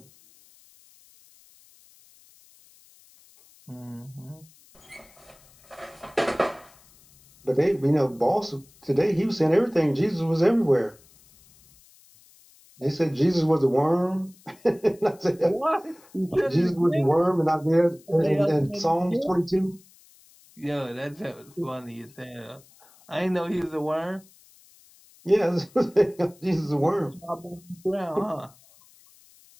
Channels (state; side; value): noise; left; hiss, 27 dB below the sound